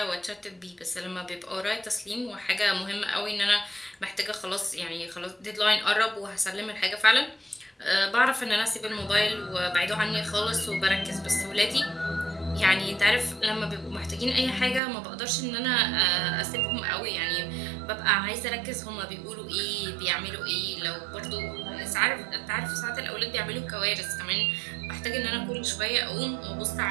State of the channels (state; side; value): drops out; left; at 14.8 s